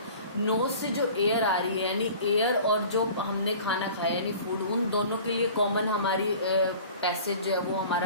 नोज से जो एयर आ रही है यानी एयर और जो हमने खाना खाया यानी फूड, उन दोनों के लिए कॉमन हमारी पैसेज जो है वो हमारा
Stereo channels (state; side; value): inverted; both; correlation -0.44